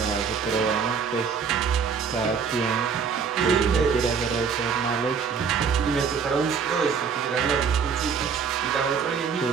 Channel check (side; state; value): left; quieter; 6.2 dB